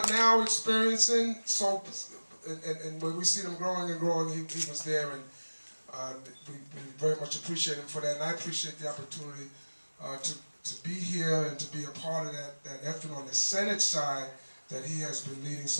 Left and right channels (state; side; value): inverted; both; correlation -1.00